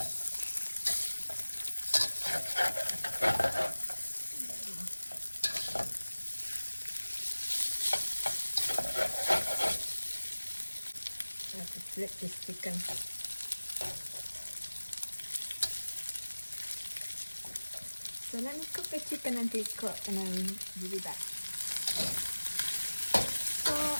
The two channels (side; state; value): both; inverted; correlation -1.00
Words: I have to flip this chicken. So let me cook the chicken until it's cooked and then give it back. So